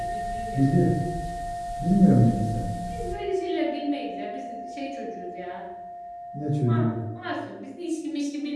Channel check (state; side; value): identical; both; correlation 1.00